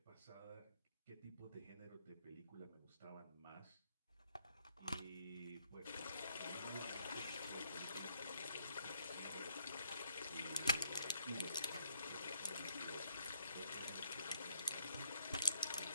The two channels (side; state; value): both; inverted; correlation -0.71